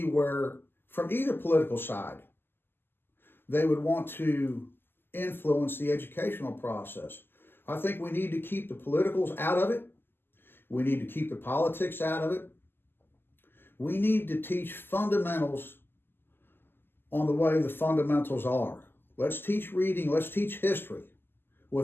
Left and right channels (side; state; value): right; late; 0.10 ms